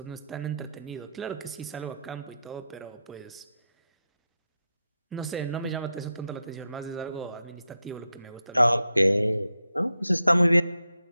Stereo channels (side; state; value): both; inverted; correlation -0.86